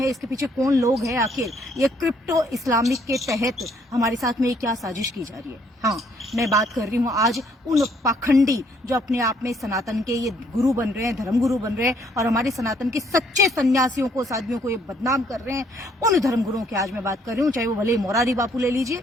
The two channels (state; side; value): normal; both; correlation 0.66